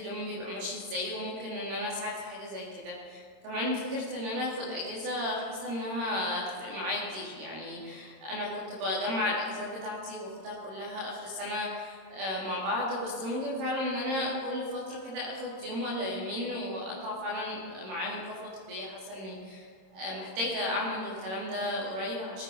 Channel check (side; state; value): left; late; 26 ms